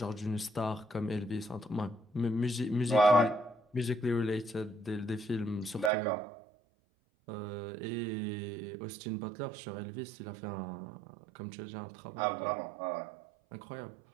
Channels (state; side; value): drops out; left; at 5.9 s